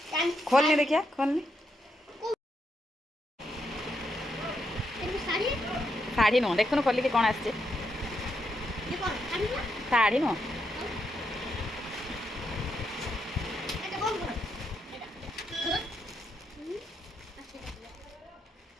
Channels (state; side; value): normal; both; correlation 0.81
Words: खोलनी देखिया खोलनी साड़ी नो देखुन खोलिक कौन आसचे साड़ी नो